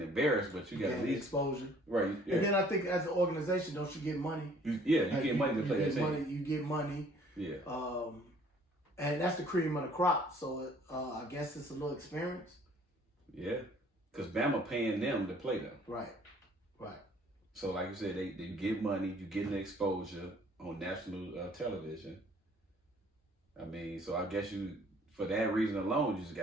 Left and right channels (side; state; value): both; normal; correlation 0.57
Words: embarrassed, but you got at least exposure, right? Yeah. And then I think as an organization, don't you get money? You get money to play that team. You get money. Yeah. And that's the cream of the crop. So I guess it's a little experience. Yeah, because Bama paying them to play them. Right. So like you said, they get money, you getting exposure on national television. I mean, so I guess for that reason alone, you just